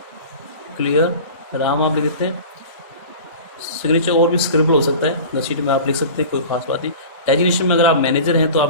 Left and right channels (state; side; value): inverted; both; correlation -0.37